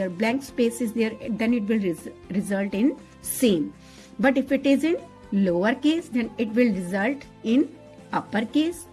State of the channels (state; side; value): identical; both; correlation 1.00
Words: blank space is there, then it will result in same. But if it is in lowercase, then it will result in uppercase.